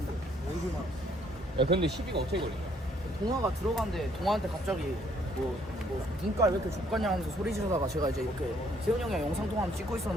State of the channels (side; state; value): both; normal; correlation 0.66